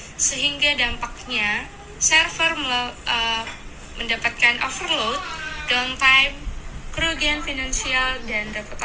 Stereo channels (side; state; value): both; identical; correlation 1.00